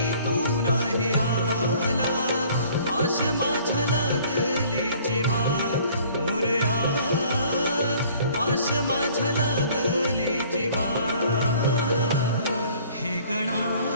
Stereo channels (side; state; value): both; inverted; correlation -0.54